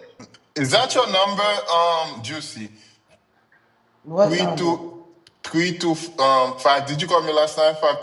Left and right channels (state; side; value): identical; both; correlation 1.00